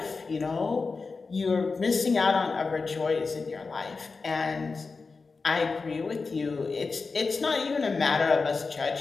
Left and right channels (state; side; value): quieter; right; 4.3 dB